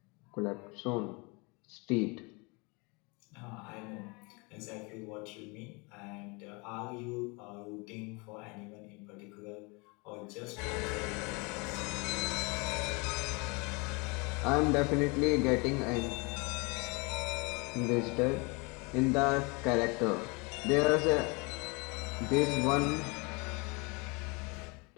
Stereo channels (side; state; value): right; quieter; 29.1 dB